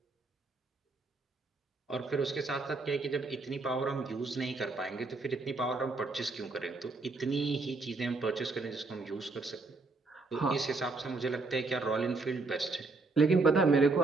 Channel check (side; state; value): left; quieter; 3.7 dB